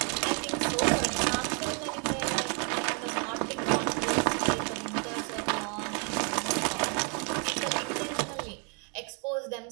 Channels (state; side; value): quieter; left; 37.2 dB